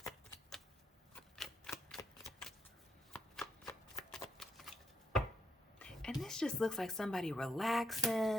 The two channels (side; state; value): both; normal; correlation 0.78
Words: And this just looks like somebody